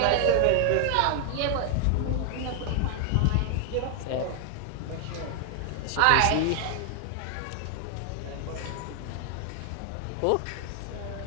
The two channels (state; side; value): different; both; correlation 0.00